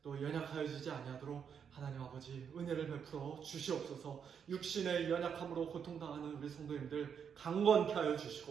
또 연약하여지지 아니하도록 하나님 아버지 은혜를 베풀어 주시옵소서. 육신의 연약함으로 고통당하는 우리 성도님들 강건케 하여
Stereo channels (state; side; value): quieter; left; 7.3 dB